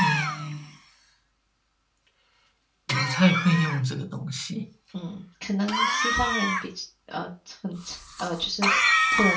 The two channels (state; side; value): identical; both; correlation 1.00